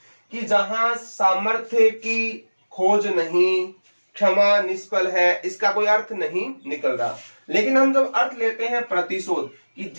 कि जहां सामर्थ्य की खोज नहीं, क्षमा निष्फल है, इसका कोई अर्थ नहीं निकल रहा। लेकिन हम जब अर्थ लेते हैं प्रतिशोध, कि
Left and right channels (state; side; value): inverted; both; correlation -1.00